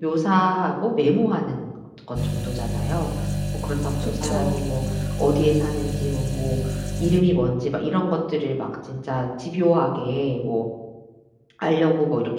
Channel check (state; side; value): identical; both; correlation 1.00